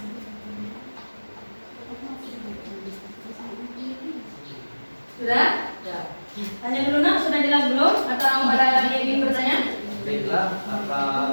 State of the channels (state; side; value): inverted; both; correlation -1.00